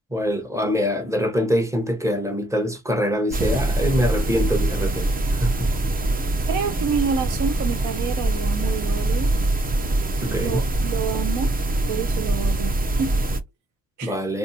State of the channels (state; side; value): normal; both; correlation 0.71